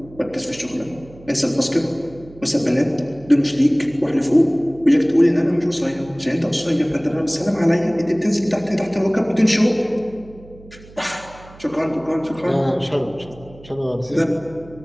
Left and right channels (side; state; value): right; noise; hum, 21 dB below the sound